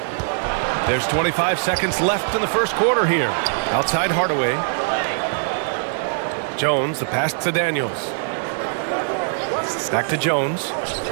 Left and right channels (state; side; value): silent; left; 58 dB below the other